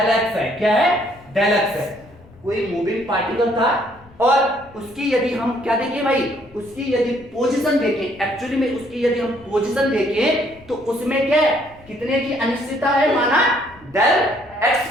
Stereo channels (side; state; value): left; noise; rumble, 25 dB below the sound